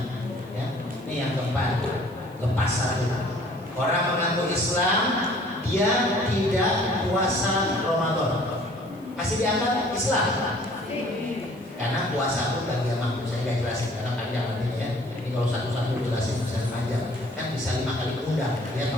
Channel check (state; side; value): noise; right; hiss, 28 dB below the sound